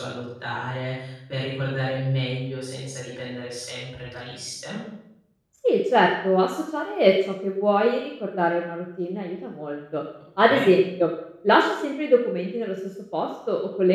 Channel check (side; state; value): both; identical; correlation 1.00